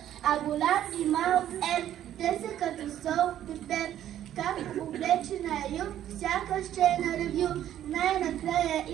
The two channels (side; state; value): left; quieter; 11.5 dB